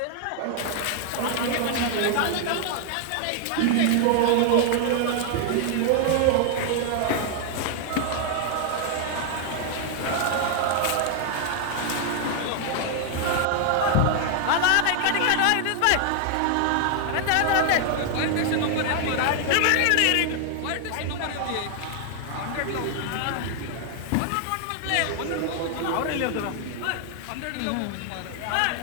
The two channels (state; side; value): different; both; correlation 0.00